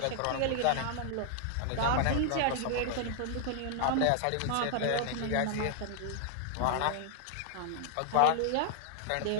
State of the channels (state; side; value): different; both; correlation 0.00